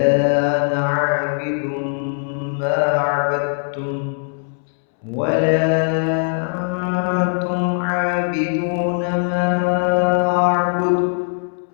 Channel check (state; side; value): silent; right; 66 dB below the other